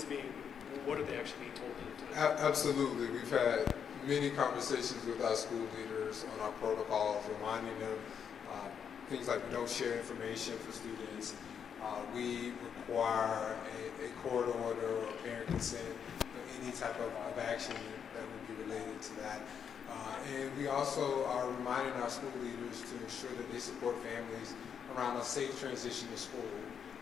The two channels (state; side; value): quieter; right; 7.5 dB